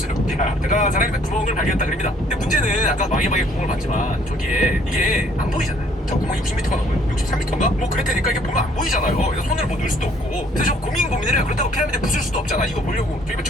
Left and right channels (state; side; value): normal; both; correlation 0.62